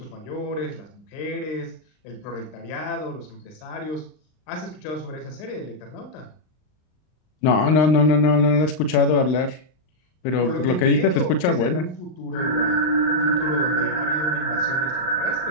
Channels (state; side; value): late; right; 39 ms